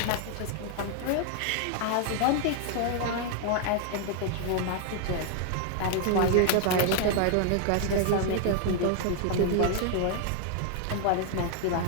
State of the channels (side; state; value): both; different; correlation 0.00